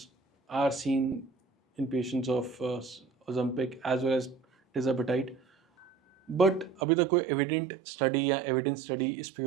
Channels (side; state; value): left; drops out; at 6.8 s